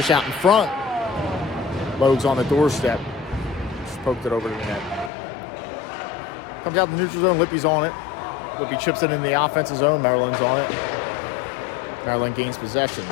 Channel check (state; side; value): drops out; right; at 5.1 s